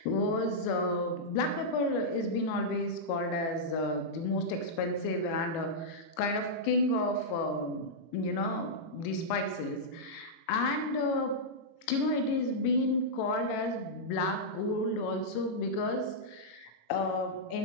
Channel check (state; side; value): late; right; 18 ms